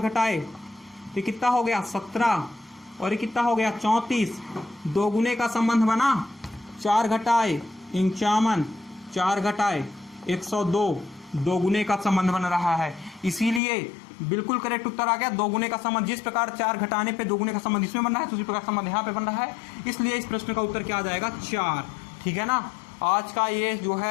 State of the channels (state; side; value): drops out; right; at 13.6 s